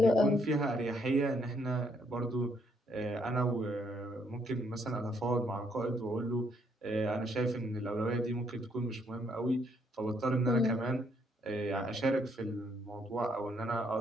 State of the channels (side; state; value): both; normal; correlation 0.71